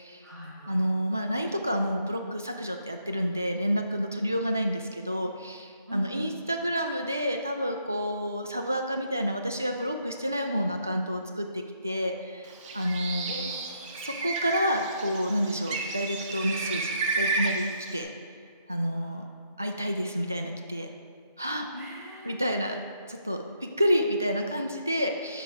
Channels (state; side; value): inverted; both; correlation -0.74